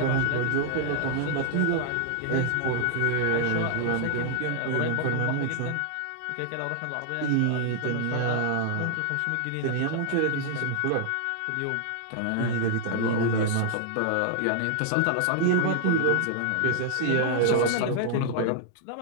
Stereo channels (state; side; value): different; both; correlation -0.01